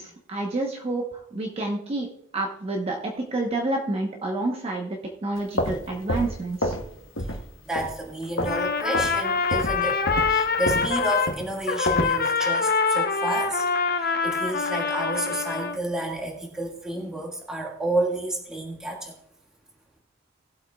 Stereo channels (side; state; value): both; normal; correlation 0.19